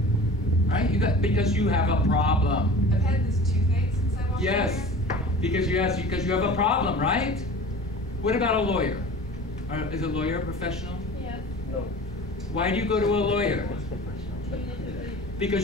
right? Because you have a problem. I've had this toothache since I walked Yes, because you have a problem, right? What about a lawyer? Is a lawyer a professional? Yes. No. Why do you go to a lawyer? You need to read.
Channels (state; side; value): normal; both; correlation 0.39